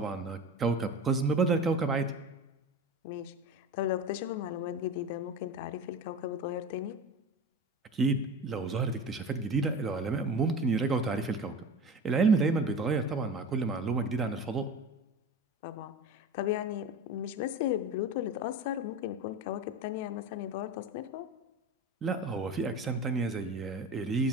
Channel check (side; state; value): both; normal; correlation 0.31